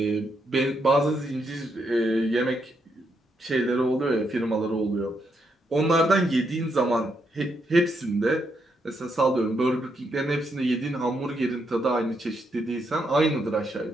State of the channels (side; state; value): both; normal; correlation 0.79